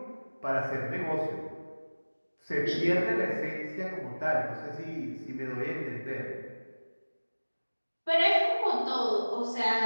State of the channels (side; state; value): both; inverted; correlation -1.00